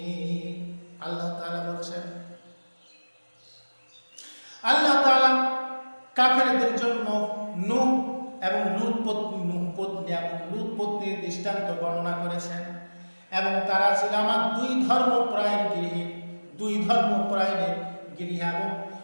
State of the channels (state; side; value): inverted; both; correlation -1.00